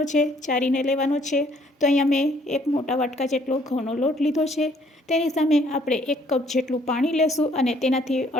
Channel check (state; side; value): normal; both; correlation 0.63